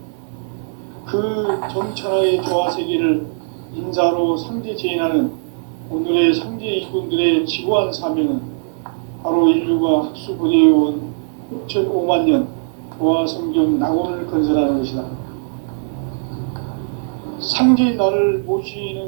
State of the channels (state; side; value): silent; left; 61 dB below the other